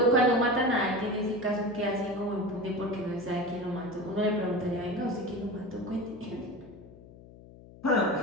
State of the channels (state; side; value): noise; left; hum, 20 dB below the sound